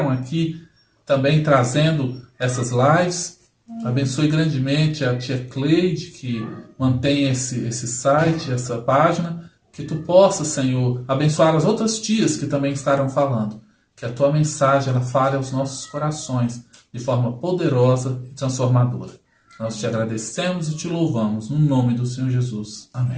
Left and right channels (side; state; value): both; identical; correlation 1.00